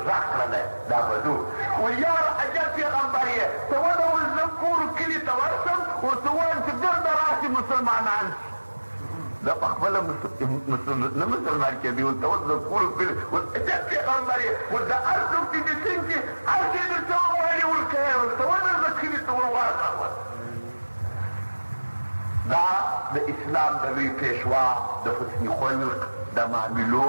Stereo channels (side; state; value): both; inverted; correlation -1.00